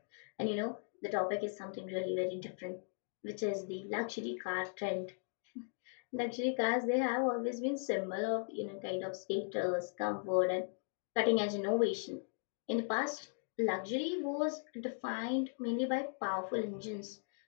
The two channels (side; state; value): right; silent; 53 dB below the other